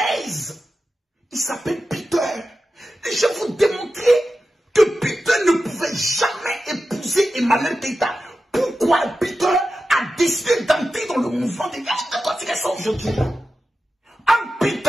il s'appelle Peter. Et je vais vous démontrer que Peter ne pouvait jamais épouser Emmanuel Keita. Pourquoi Peter a décidé d'entrer dans le mouvement des gars qui continuent ça aujourd'hui? En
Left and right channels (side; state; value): both; normal; correlation 0.92